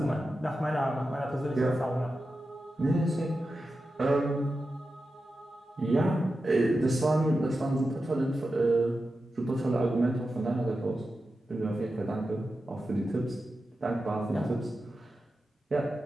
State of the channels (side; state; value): both; normal; correlation 0.91